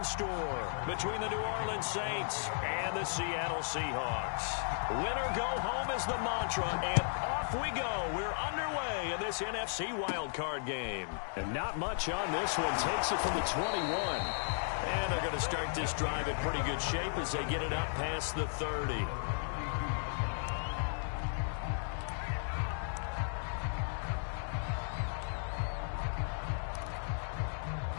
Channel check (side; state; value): right; silent; digital silence